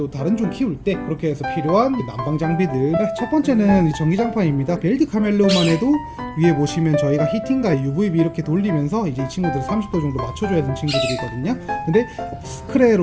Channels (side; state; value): both; identical; correlation 1.00